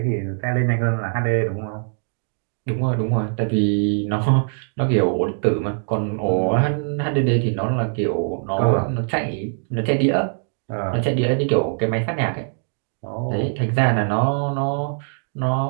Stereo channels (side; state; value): left; silent; digital silence